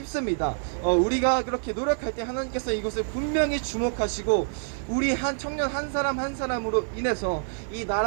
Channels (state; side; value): silent; left; digital silence